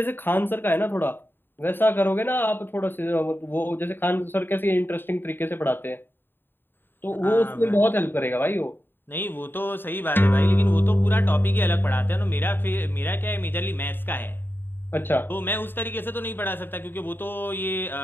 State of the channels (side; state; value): right; late; 0.097 ms